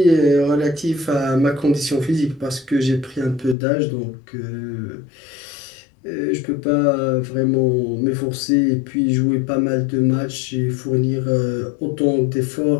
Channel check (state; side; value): drops out; right; at 3.6 s